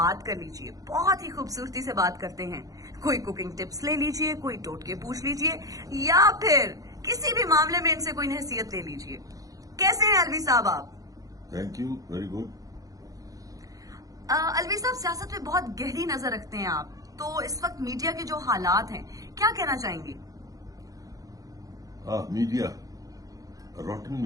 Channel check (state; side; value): late; left; 0.17 ms